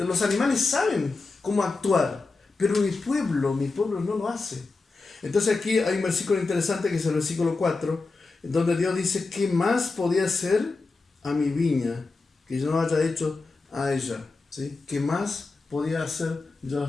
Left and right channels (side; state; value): right; quieter; 3.8 dB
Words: animales saben cómo actuar, pero mi pueblo no lo hace. Entonces aquí hay un versículo interesante que es el versículo 4, donde Dios dice, ¿qué más podía hacer a mi viña que yo no haya hecho a ella? ¿Sí? ¿Qué más podía hacer yo